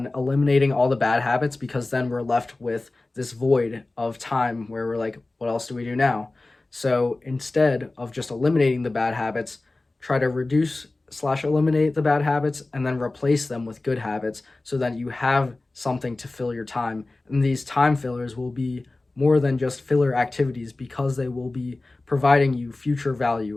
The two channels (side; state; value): right; quieter; 3.1 dB